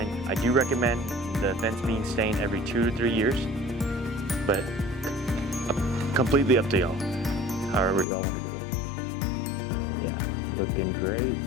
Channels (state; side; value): drops out; right; at 8.1 s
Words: I do recommend the fence being stained every 2 to 3 years, but completely up to y'all, however y'all want to do it. Yeah, looking great.